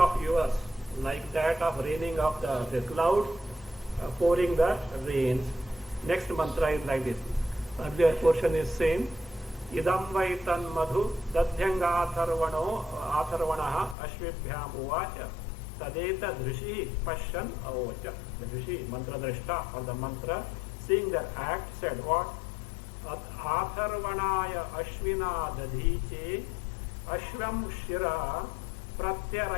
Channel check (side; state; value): right; drops out; at 14.0 s